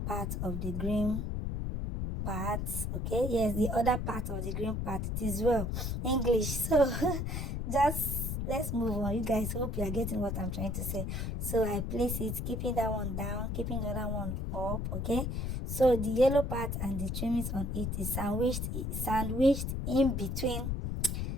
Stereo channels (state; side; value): noise; left; rumble, 2 dB below the sound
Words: of the green part. Okay, yes, the other part of the green part. It is well English. So just let's move on. You guys, hope you are getting what I'm trying to say. So I place it, keeping that one down, keeping the other one up. Okay, so the yellow part and the trimmings on it is sandwiched in between